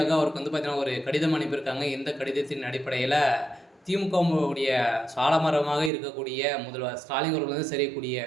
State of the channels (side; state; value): left; drops out; at 5.9 s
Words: அவருக்கு பார்த்தீங்கன்னா ஒரு கடிதம் அனுப்பியிருக்காங்க. இந்த கடிதத்தின் அடிப்படையில் திமுகவுடைய சாலமரமாக இருக்கக்கூடிய முதல்வர் ஸ்டாலின் அவர்கள் செய்யக்கூடிய